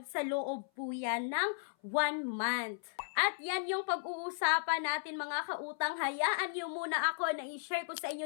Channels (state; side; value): silent; right; 54 dB below the other